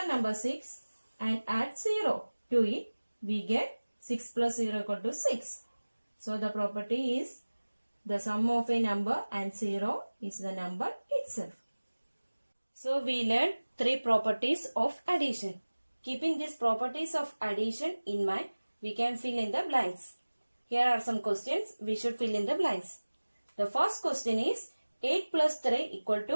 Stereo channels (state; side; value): inverted; both; correlation -1.00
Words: number 6 and add 0 to it. We get 6 plus 0 equal to 6. So the property is the sum of a number and 0 is the number itself. So we learned 3 properties of addition. Keeping these properties of addition in mind, we can fill in the blanks. Here are some questions. We should fill in the blanks. The first question is 8 plus 3 equal